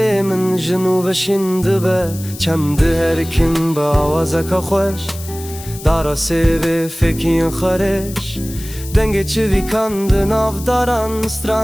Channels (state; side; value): noise; left; hiss, 14 dB below the sound